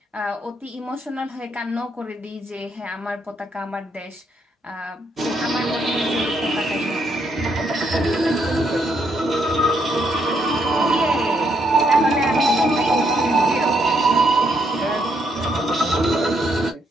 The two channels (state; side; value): normal; both; correlation 0.74